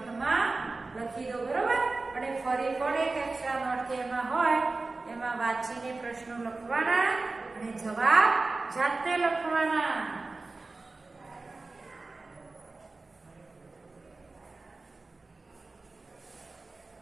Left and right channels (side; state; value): left; quieter; 3.5 dB